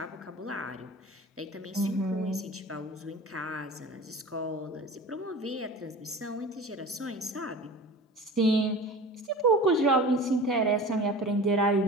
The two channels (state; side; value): normal; both; correlation 0.37